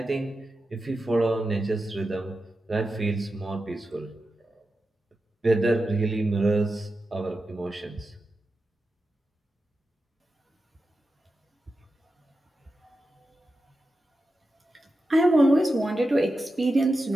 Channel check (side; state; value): both; normal; correlation 0.91